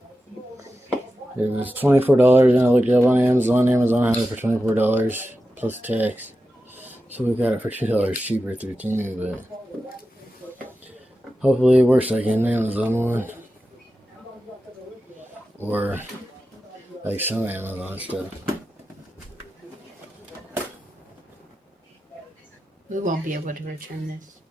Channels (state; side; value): normal; both; correlation 0.92